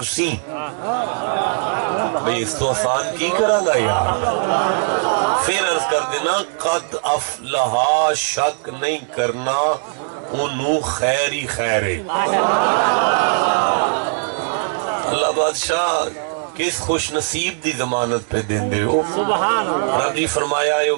سی بھئی اس تو آسان کی کرا گا یار پھر عرض کر دینا قد افلحا شک نہیں کرنا انہوں خیری خیرے اللہ بادشاہ کس خوش نصیب دی ضمانت پہ دین دے ہو رب جی فرمایا یہ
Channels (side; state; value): left; silent; 66 dB below the other